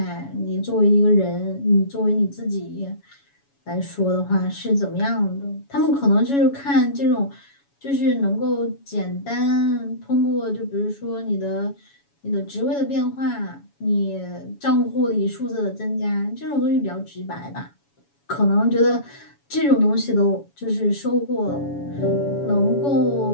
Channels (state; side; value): late; right; 7.1 ms